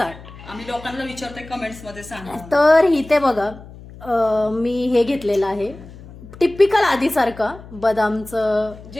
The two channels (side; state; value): left; noise; hum, 18 dB below the sound